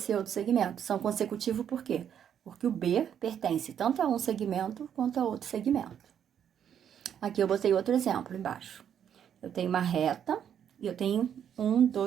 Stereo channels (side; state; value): left; quieter; 8.9 dB